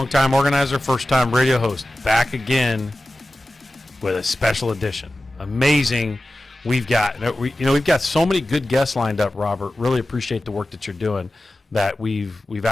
organizer, first-time radio host, back again with a special edition. Amazing. We've got so many good guests lined up, Robert. Really appreciate the work that you're doing. That we've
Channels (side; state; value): both; normal; correlation 0.95